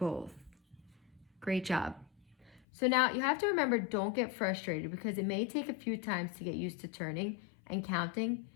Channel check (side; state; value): right; drops out; at 2.6 s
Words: Great job. So now you have to remember, don't get frustrated because it may take a few times to get used to turning and counting,